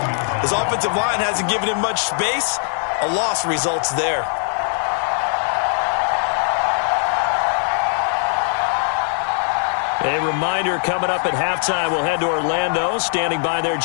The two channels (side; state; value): right; silent; digital silence